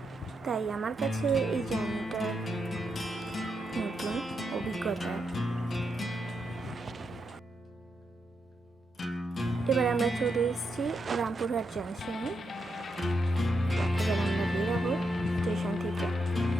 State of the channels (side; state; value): both; normal; correlation 0.83